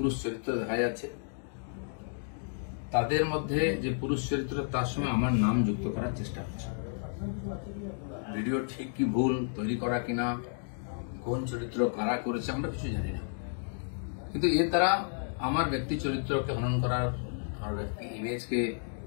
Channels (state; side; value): silent; right; digital silence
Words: চরিত্র দেখা যাচ্ছে। তাদের মধ্যে যে পুরুষ চরিত্র তার সঙ্গে আমার নাম যুক্ত করার চেষ্টা হচ্ছে। ভিডিও ঠিক কি ভুল তৈরি করা কিনা, কোন চরিত্র কারা করেছে আমরা কিছু জানি না, কিন্তু এর দ্বারা আমার ব্যক্তি চরিত্রকে হনন করার, আমার ব্যক্তি ইমেজকে